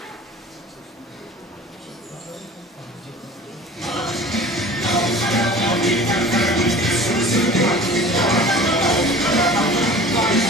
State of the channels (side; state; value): both; normal; correlation 0.42